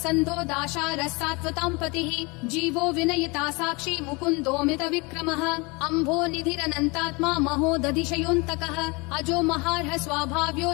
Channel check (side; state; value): right; quieter; 27.5 dB